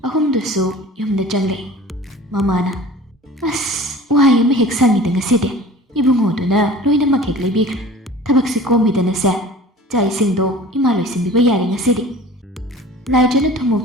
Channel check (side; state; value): both; normal; correlation 0.43